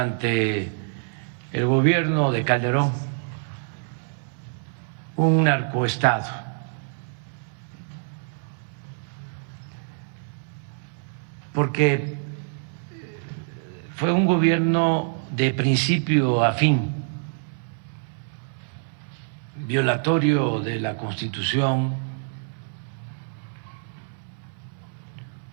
el gobierno de Calderón un narcoestado. Porque fue un gobierno de principio a fin, violatorio de la Constitución,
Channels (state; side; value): silent; left; 61 dB below the other